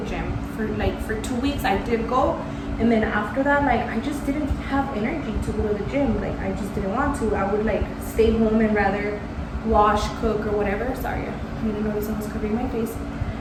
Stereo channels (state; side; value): identical; both; correlation 1.00